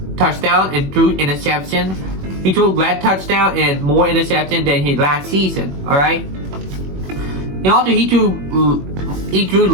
touchdown and threw interception. He threw less touchdown and more interception than his last season. All right. And also he threw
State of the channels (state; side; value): late; left; 21 ms